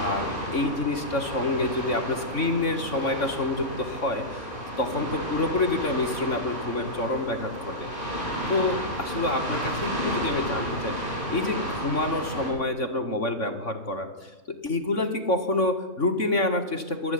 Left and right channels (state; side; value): late; right; 3.6 ms